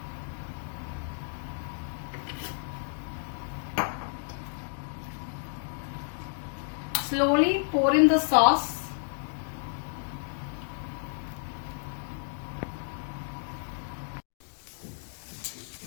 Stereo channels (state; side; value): silent; right; digital silence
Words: Slowly pour in the sauce.